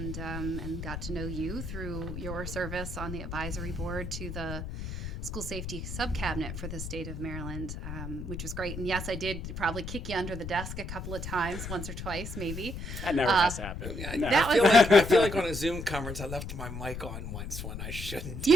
got to know you through your service on the advisory board to the school safety subcabinet for the state of Maryland, which was great. And yes, I did probably kick you under the desk a couple of times, once or twice, maybe. That never has happened. No. I feel like on a Zoom conference, I left my mic on once when I shouldn't.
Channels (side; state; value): left; noise; rumble, 7 dB below the sound